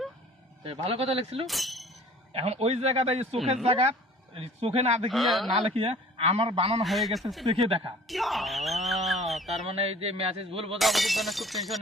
ভালো কথা লিখছিল। এখন ওই জায়গাটা চোখের জায়গা চোখে না দেখিয়া আমার বানানো হয়ে গেছে চোখে দেখা। তার মানে এই যে মেসেজ ভুল বোঝাবুঝির জন্য খুব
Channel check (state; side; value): normal; both; correlation 0.49